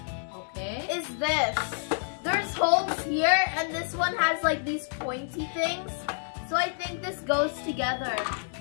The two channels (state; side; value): silent; right; digital silence